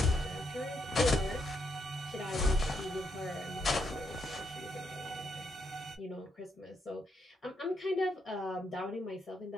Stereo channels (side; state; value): both; normal; correlation 0.78